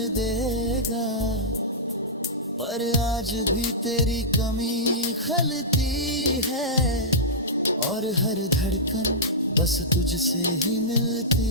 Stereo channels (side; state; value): both; normal; correlation -0.14